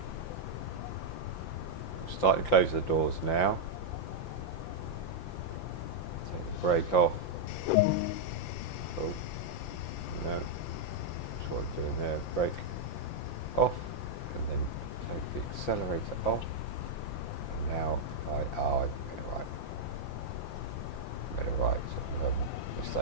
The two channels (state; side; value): late; right; 5.8 ms